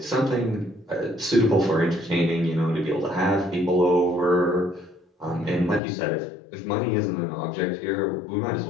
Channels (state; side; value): drops out; right; at 5.8 s